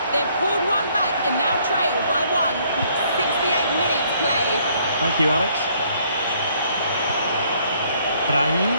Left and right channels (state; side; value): inverted; both; correlation -0.65